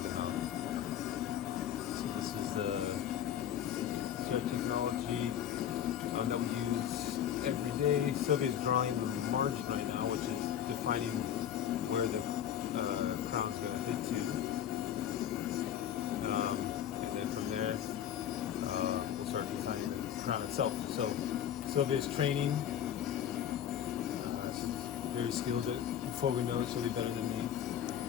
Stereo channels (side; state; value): right; quieter; 10.0 dB